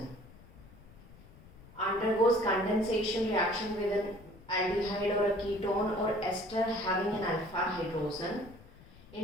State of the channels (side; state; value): left; noise; rumble, 21 dB below the sound